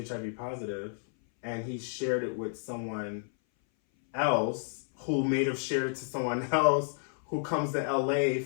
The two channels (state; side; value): silent; right; 57 dB below the other